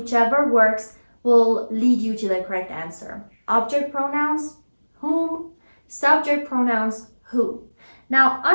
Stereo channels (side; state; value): both; inverted; correlation -1.00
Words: works will lead you to the correct answer. Object pronouns, whom. Subject pronouns, who. Now,